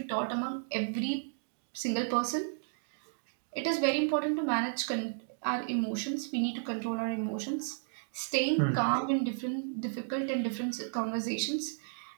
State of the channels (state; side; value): silent; left; digital silence